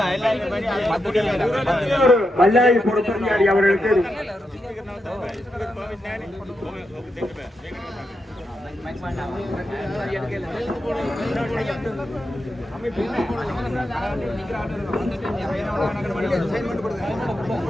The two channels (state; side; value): normal; both; correlation 0.86